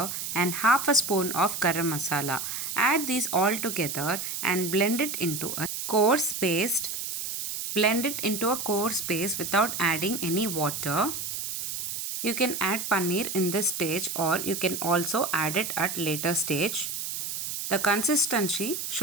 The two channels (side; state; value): right; noise; hiss, 4 dB below the sound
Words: and half a spoon of garam masala. Add these all together and blend it into a coarse paste. Blend it into a coarse paste without adding any water. You can add paneer in this stage or you can also add it at later stage. The consistency